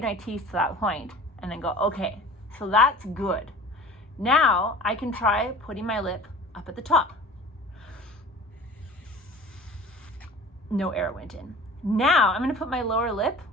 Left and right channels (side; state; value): both; normal; correlation 0.42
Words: my teeth to that point, and then go, okay, so that's good. Now I can try putting my lip up at the top. No air went in. Now I'm gonna put my lower lip,